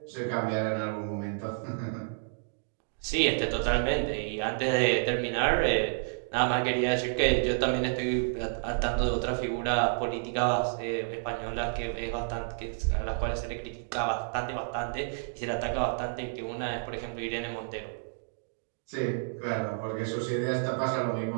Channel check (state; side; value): silent; left; digital silence